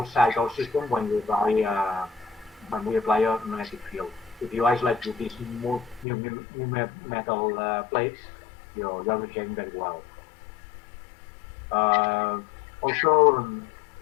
our system when we apply a magnetic field. If you isolate with these new metal plates, you're behaving very well. Also,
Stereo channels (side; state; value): right; drops out; at 6.1 s